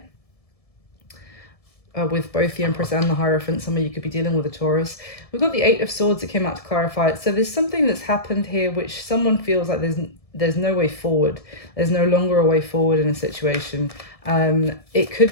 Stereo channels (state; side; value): late; right; 1.7 ms